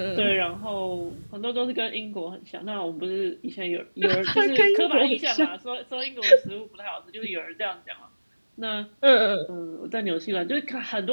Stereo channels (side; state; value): both; inverted; correlation -1.00